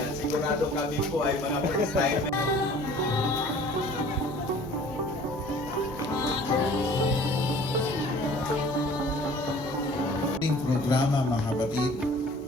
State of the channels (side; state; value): both; normal; correlation 0.49